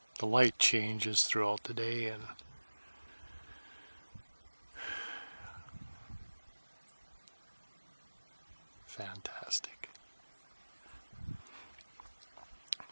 The light changes throughout the day, and fantastic.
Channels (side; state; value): both; inverted; correlation -1.00